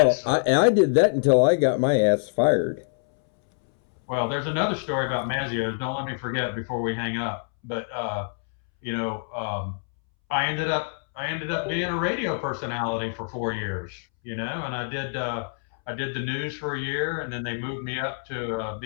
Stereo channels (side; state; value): right; silent; 61 dB below the other